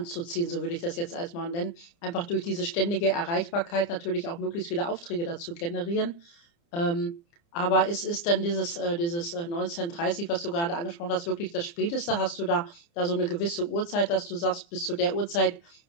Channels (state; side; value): late; right; 29 ms